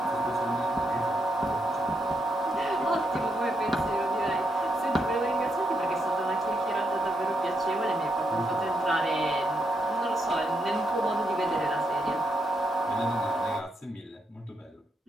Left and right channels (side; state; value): both; normal; correlation 0.79